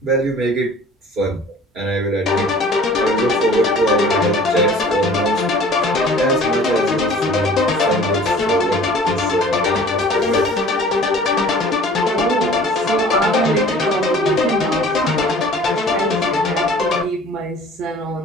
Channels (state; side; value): normal; both; correlation 0.49